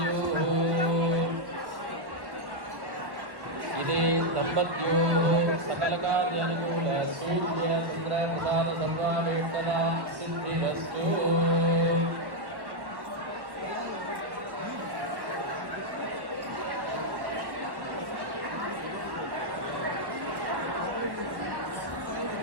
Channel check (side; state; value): left; late; 1.1 ms